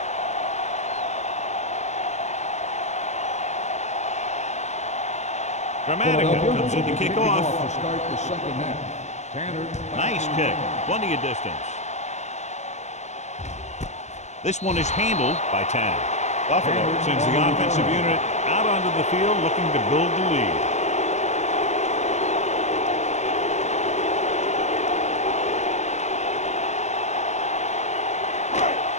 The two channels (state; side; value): late; right; 0.33 ms